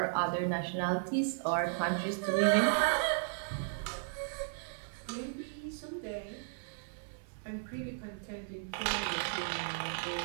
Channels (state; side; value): silent; left; 54 dB below the other